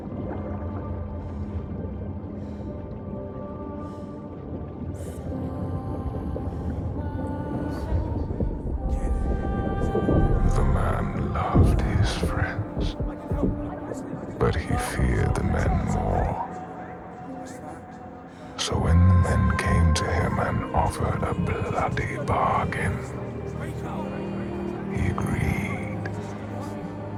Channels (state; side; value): identical; both; correlation 1.00